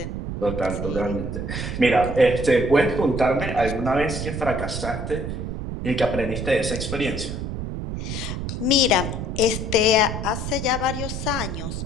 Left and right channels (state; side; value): noise; right; rumble, 4 dB below the sound